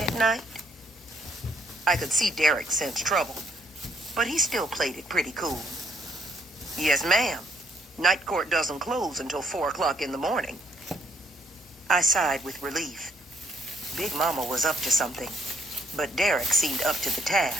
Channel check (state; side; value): normal; both; correlation 0.69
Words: at night? I could see Derek sense trouble, but he still played it pretty cool. Yes, ma'am. Night court doesn't close until 4 o'clock in the morning. I sighed with relief. Big Mama was up to something, but Derek seemed up to the